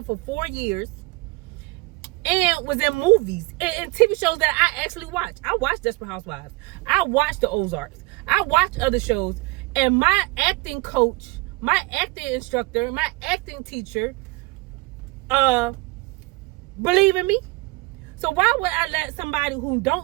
for 4 years and was in movies and TV shows that I actually watch. I watch Desperate Housewives. I watch The Ozarks. I watch other shows. And my acting coach, my acting instructor, my acting teacher, believe in me. So why would I let somebody who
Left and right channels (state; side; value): quieter; left; 23.0 dB